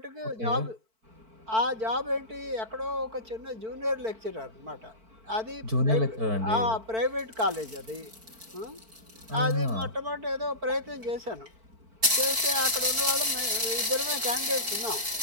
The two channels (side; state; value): left; late; 4.5 ms